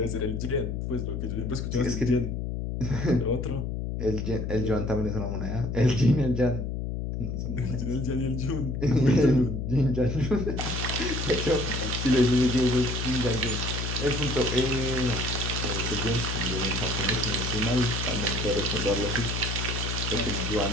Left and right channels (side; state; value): left; noise; hum, 3 dB below the sound